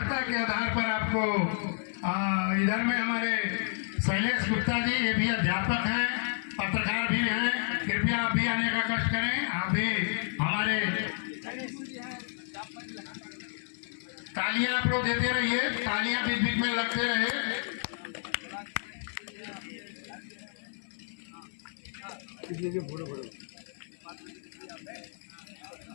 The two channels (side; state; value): right; silent; 57 dB below the other